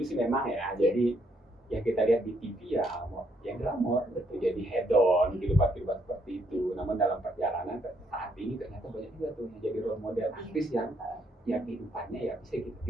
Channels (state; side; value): normal; both; correlation 0.72